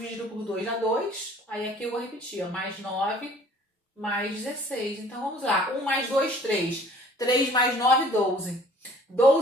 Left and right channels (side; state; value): both; normal; correlation 0.53